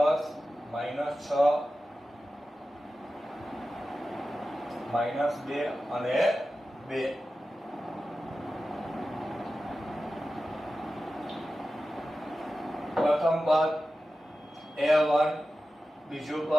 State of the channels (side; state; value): both; normal; correlation 0.93